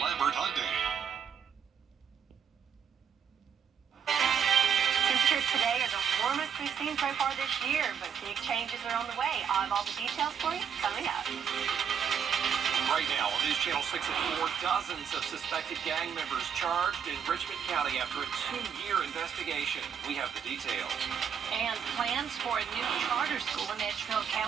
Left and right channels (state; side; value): quieter; left; 7.6 dB